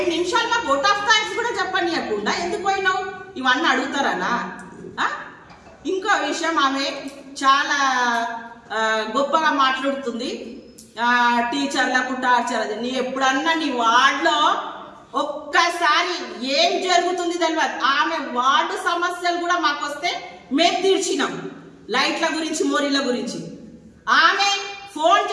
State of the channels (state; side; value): identical; both; correlation 1.00